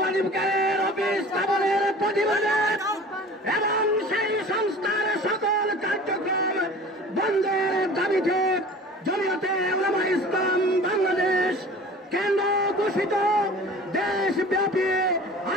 অফিস স্থাপনের প্রতিবাদে এবং সেই সংস্থার সকল কার্যক্রম বন্ধের দাবিতে জমিয়তে উলামা ইসলাম বাংলাদেশ কেন্দ্র ঘোষিত দেশব্যাপী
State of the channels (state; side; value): normal; both; correlation 0.42